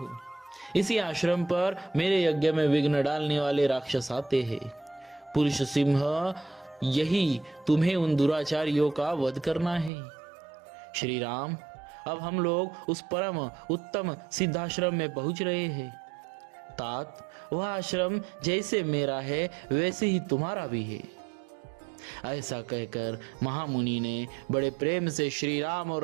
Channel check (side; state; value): left; drops out; at 9.9 s